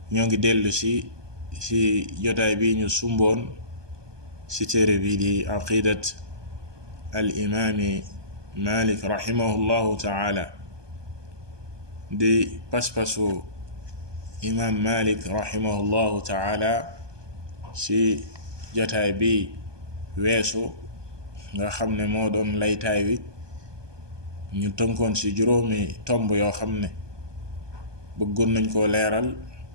ñoo ngi dellu ci jotaay bi ñu sumboon ci téere bi di aqidat al imaami Malik rahimahullahu ta'ala di paspasu imaam Malik rahimahullahu ta'ala ci jotaay bi weesu nga xam ne moo doon laytaay wi ñu tënkoon ci juróomi tomb yoo xam ne bëggoon nañ koo leeral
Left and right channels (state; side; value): late; left; 1.2 ms